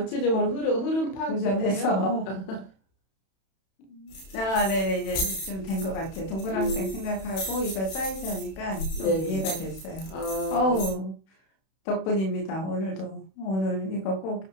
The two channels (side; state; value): right; late; 31 ms